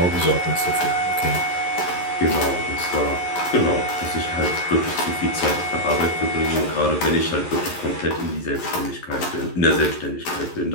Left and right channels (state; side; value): late; right; 11 ms